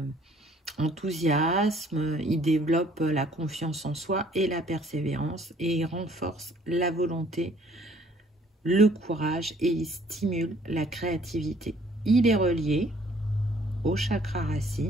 enthousiasme, il développe la confiance en soi et la persévérance, et il renforce la volonté, le courage, et il stimule la créativité. Il est relié au chakra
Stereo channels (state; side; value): normal; both; correlation 0.59